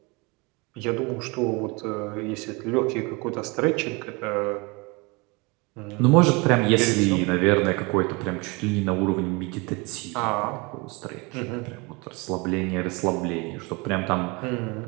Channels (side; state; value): left; quieter; 27.6 dB